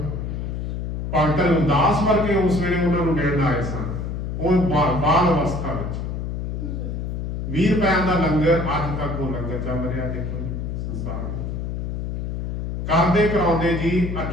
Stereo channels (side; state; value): left; noise; hum, 4 dB below the sound